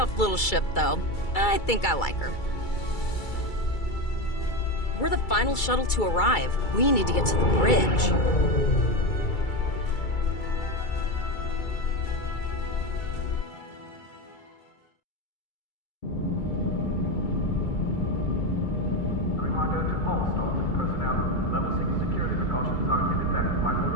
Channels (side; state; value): right; late; 2.3 ms